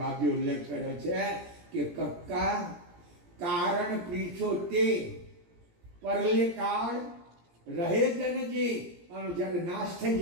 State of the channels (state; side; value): late; left; 17 ms